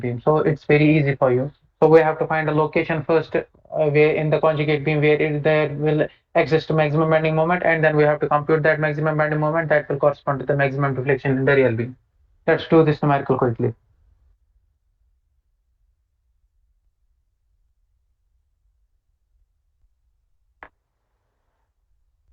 beam. So it's very easy for you. So we have to find a location first where in the conjugate beam where there will exist maximum bending moment, and then we have to compute that maximum bending moment that will correspond to the maximum deflection in the real beam. Let's do this numerical quickly.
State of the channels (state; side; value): identical; both; correlation 1.00